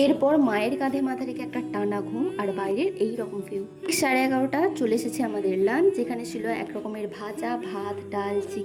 এরপর মায়ের কাঁধে মাথা রেখে একটা টানা ঘুম, আর বাইরের এই রকম ভিউ। 11:30 চলে এসেছে আমাদের লাঞ্চ, যেখানে ছিল এক রকমের ভাজা, ভাত, ডাল,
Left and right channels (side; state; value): both; identical; correlation 1.00